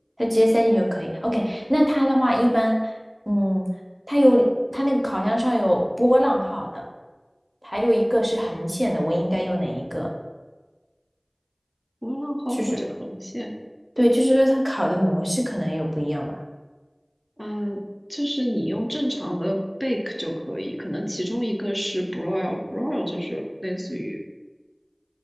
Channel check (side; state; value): both; identical; correlation 1.00